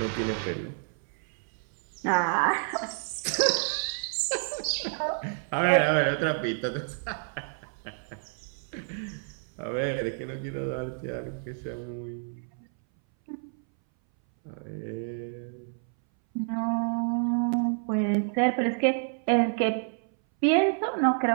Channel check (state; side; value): silent; left; 59 dB below the other